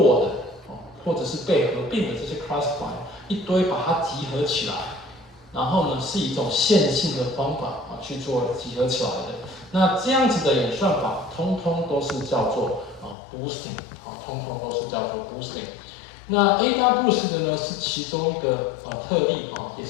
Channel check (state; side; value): drops out; right; at 13.2 s